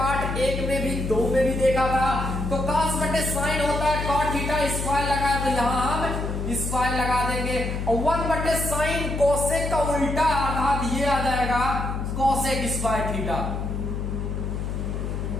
1 में भी 2 में भी देखा था। तो कॉस बटे साइन होता है कॉट थीटा, स्क्वायर लगाया तो यहां हम स्क्वायर लगा देंगे, और 1 बटे साइन कोसेक का उल्टा, अर्थात ये आ जाएगा कोसेक स्क्वायर थीटा।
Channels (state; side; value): noise; left; hum, 3 dB below the sound